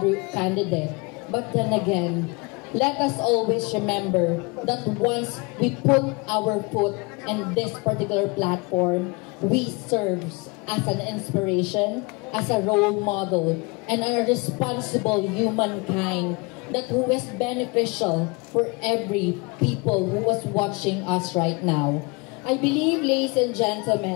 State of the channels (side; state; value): right; quieter; 28.5 dB